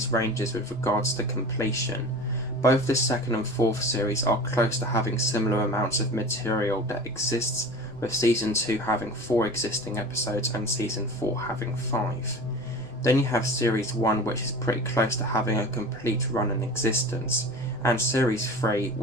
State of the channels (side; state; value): both; normal; correlation 0.36